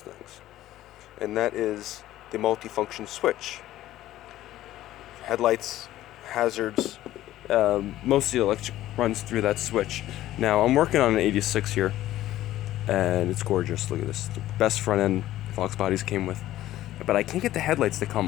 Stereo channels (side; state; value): right; quieter; 14.3 dB